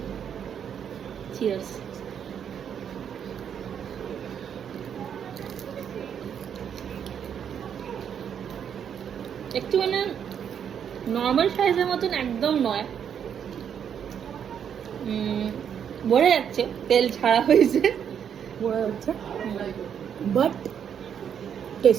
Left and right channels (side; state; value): left; quieter; 8.3 dB